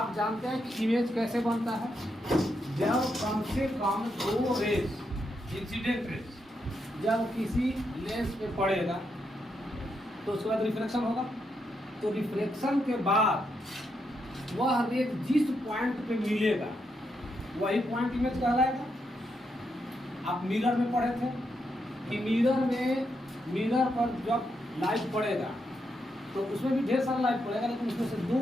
जानते हैं कि इमेज कैसे बनता है। जब कम से कम दो रेज, इंसिडेंट रेज जब किसी लेंस पे पड़ेगा तो उसके बाद रिफ्लेक्शन होगा। तो रिफ्लेक्शन के बाद वह रेज जिस पॉइंट पे मिलेगा वही पॉइंट इमेज कहलाएगा। आप मिरर में पढ़े थे कि मिरर पर जब लाइट पड़ेगा तो उसमें भी ढेर सारा लाइट पड़ेगा, लेकिन उसमें से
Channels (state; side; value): normal; both; correlation 0.81